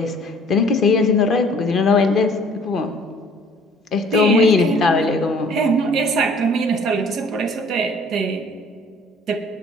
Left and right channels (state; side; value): normal; both; correlation 0.54